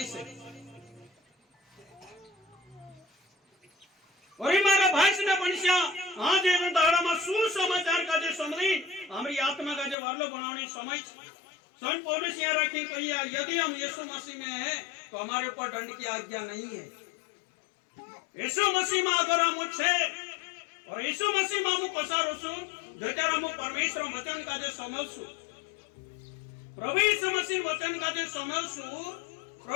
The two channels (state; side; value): drops out; right; at 10.0 s